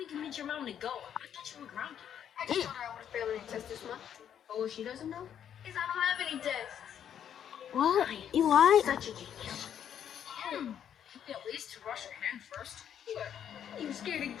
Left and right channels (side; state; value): right; quieter; 9.3 dB